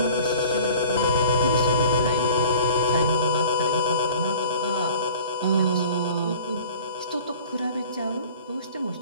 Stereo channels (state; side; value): inverted; both; correlation -0.45